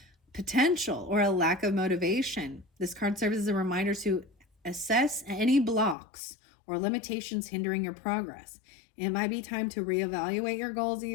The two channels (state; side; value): drops out; right; at 6.0 s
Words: potential or a lack of motivation. This card serves as a reminder to assess any blocks or limitations hindering your progress. It might be time to reevaluate your goals,